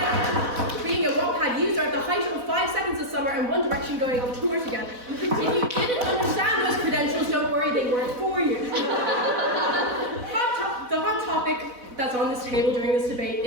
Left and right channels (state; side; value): late; left; 4.1 ms